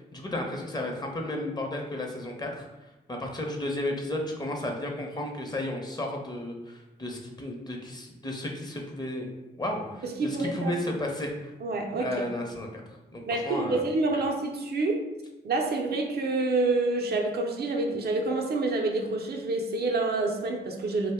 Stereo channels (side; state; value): both; normal; correlation 0.48